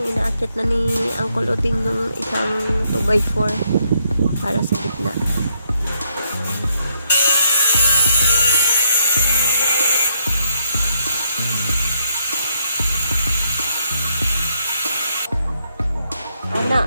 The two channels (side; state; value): both; inverted; correlation -0.74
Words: inaakit na ni Uncle Uting ng isang 2x4 para sa gitna. Anak.